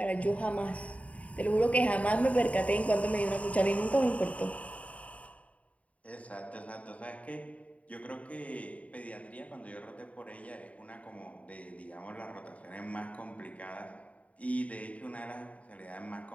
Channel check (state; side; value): late; right; 0.067 ms